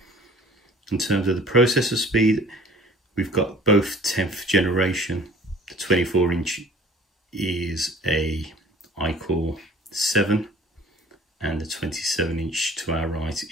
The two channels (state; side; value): normal; both; correlation 0.49